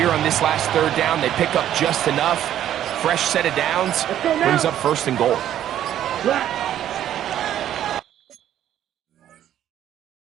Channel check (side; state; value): left; quieter; 11.3 dB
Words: on this last 3rd down, they pick up just enough. Fresh set of downs brings up first and goal.